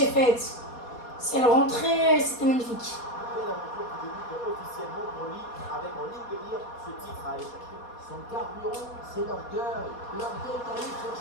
faite. C'est le rentrée, c'était magnifique. Son carburant, c'est l'orgueil. L'orgueil d'aller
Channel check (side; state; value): right; late; 4.2 ms